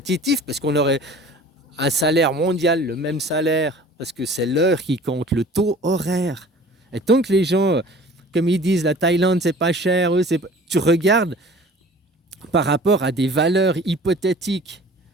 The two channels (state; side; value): normal; both; correlation 0.46